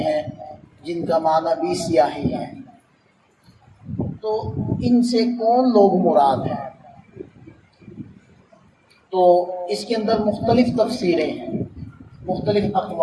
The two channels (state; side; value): identical; both; correlation 1.00